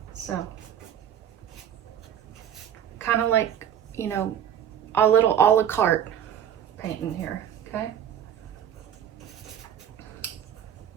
So, kind of like, you know, a little a la carte painting here, okay?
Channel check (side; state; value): left; quieter; 9.5 dB